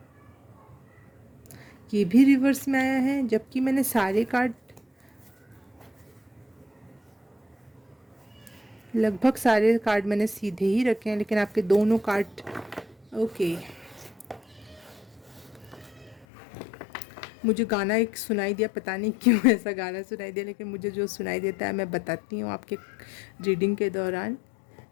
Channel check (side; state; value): right; drops out; at 16.2 s